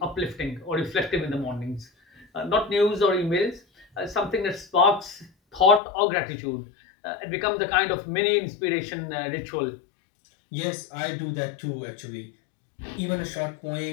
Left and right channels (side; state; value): right; drops out; at 5.8 s